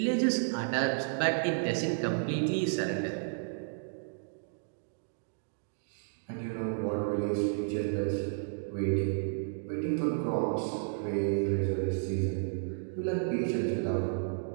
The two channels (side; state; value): left; silent; digital silence